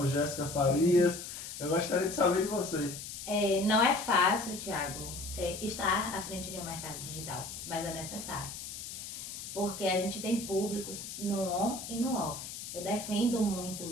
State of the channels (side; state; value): left; noise; hiss, 9 dB below the sound